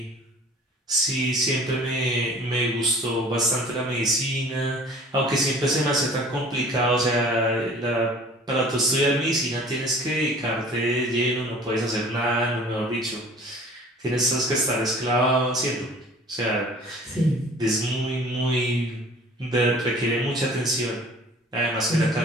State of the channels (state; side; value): normal; both; correlation 0.47